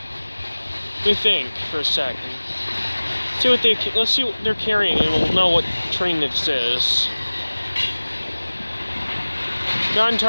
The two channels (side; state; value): both; inverted; correlation -1.00